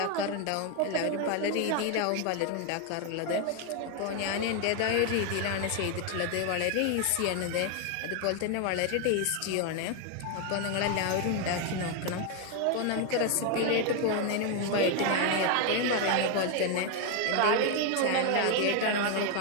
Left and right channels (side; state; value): both; different; correlation 0.01